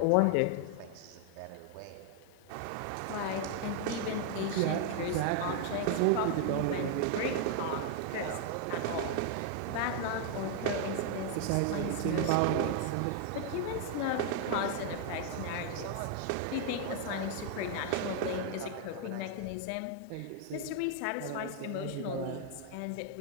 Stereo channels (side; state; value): both; different; correlation 0.00